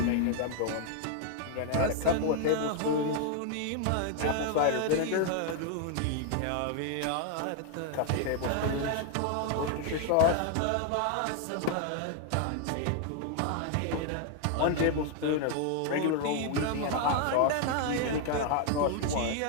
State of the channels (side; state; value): both; different; correlation 0.00